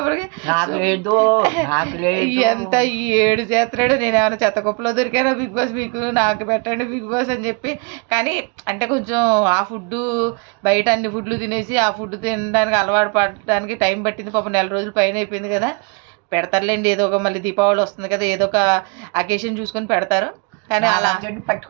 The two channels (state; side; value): quieter; left; 32.4 dB